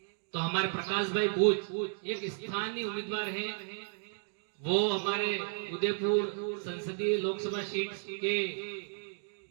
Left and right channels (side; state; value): left; silent; digital silence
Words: तो हमारे प्रकाश भाई बूच एक स्थानीय उम्मीदवार हैं। वो हमारे उदयपुर संसदीय लोकसभा सीट के